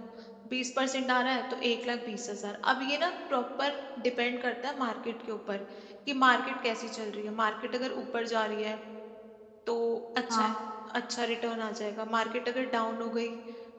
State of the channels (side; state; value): both; identical; correlation 1.00